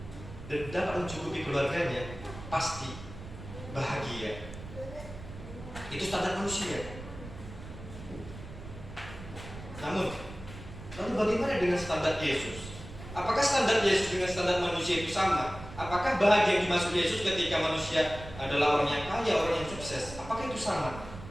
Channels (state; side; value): noise; right; rumble, 13 dB below the sound